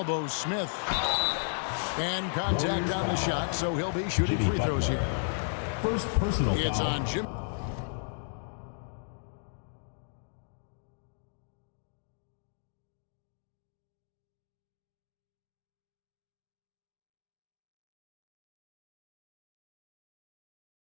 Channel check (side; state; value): right; silent; digital silence